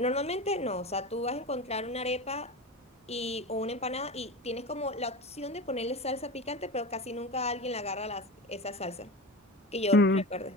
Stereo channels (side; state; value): both; normal; correlation 0.27